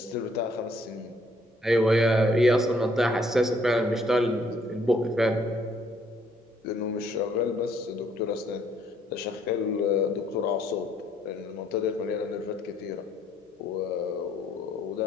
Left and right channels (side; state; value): both; normal; correlation 0.66